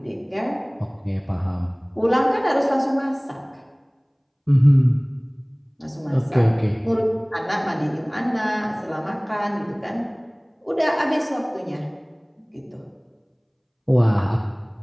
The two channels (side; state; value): both; identical; correlation 1.00